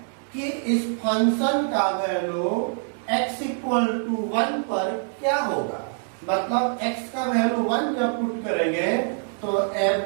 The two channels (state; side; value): silent; left; 62 dB below the other